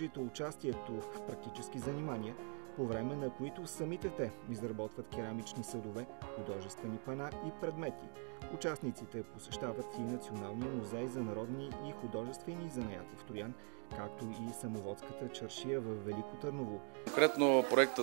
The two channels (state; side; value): quieter; left; 40.0 dB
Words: участието в практически занимания, по време на които самите те изработват керамични съдове, художествени пана и предмети. Участниците посещават и Националния музей за народни и художествени занаяти в Троян, както и самоводската чаршия в Велико Търново. Конкретно